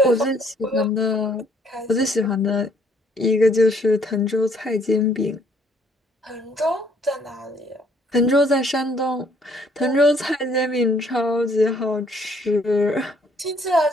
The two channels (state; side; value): normal; both; correlation 0.64